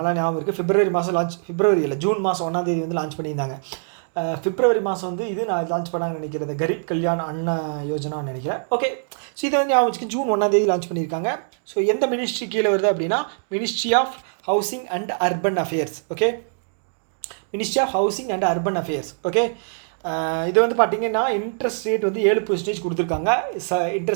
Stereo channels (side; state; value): left; silent; digital silence